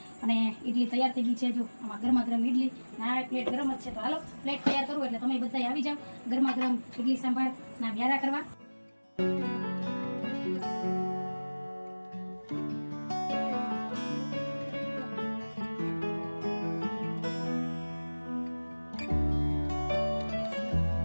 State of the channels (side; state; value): both; inverted; correlation -1.00